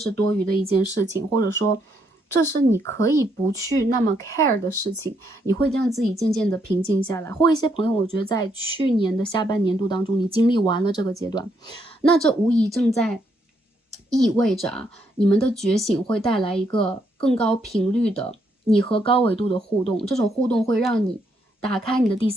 多余的一件事情，或者说这是你可以不去那么 care 的事情，你会让自己渐渐的平静下来。或一些朋友，我觉得在去年的下半年度当中，你经历完了这个阶段，那这无疑正在意味着你们的觉醒会带来一个更高频率的你和高维度的互动，这种互动会让你打开你的第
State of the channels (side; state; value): both; normal; correlation 0.75